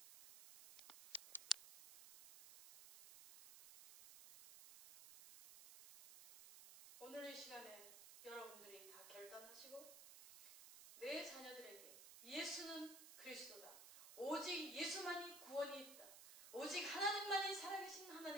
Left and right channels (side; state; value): right; noise; hiss, 13 dB below the sound